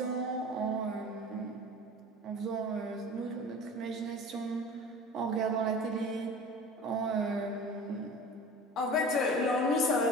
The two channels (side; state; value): both; normal; correlation 0.38